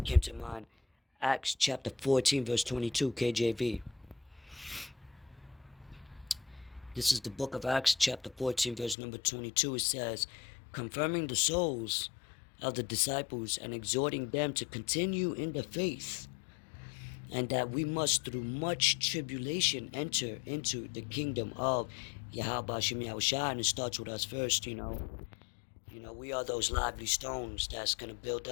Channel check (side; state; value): right; drops out; at 9.0 s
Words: mind. Acts chapter 14, verse 22, KJV. This is the book of Acts chapter 14, verse number 22. It says, confirming the souls of the disciples and exhorting them to continue in the faith, and that we must through much tribulation enter into the kingdom of Yahweh Shem Yahushua. And it starts with us first, we are those lively stones that's going to build